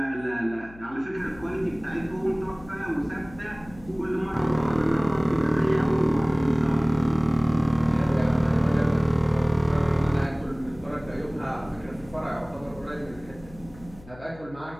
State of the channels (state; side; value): noise; left; hum, 20 dB below the sound